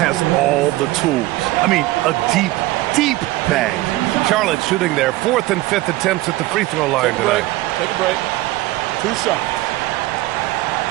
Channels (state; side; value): quieter; left; 18.1 dB